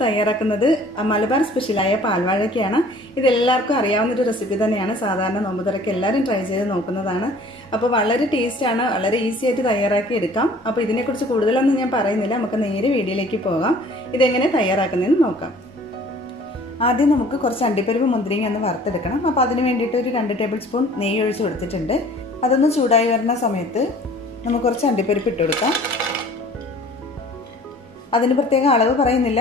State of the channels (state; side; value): normal; both; correlation 0.51